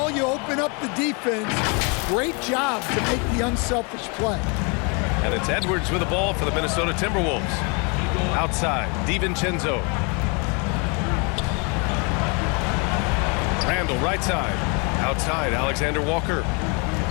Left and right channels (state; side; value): quieter; right; 33.2 dB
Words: you open up the defense. Great job to make the unselfish play. And it's Edwards with the ball for the Minnesota Timberwolves. Outside, DiVincenzo. Randall, right side. Outside, Alexander Walker.